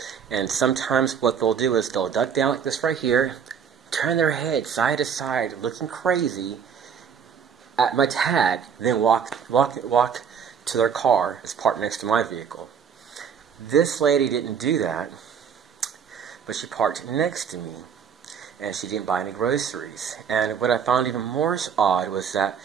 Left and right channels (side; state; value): left; quieter; 7.3 dB